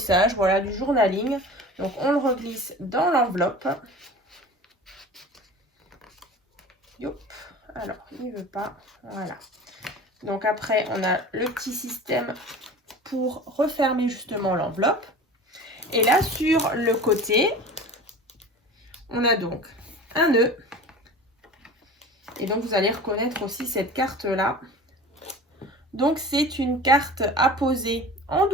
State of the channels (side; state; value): both; normal; correlation 0.38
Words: voilà, du journaling. Donc, on le reglisse dans l'enveloppe. Alors, il ne veut pas. Voilà. Donc après, on a le petit système pour refermer justement l'enveloppe. Et là, sur le côté, on a donc un nœud. Et donc, vous allez reconnaître aussi cette carte-là. Donc, c'est une carte à poser en